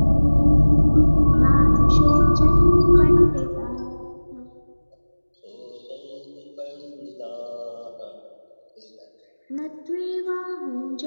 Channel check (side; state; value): both; inverted; correlation -1.00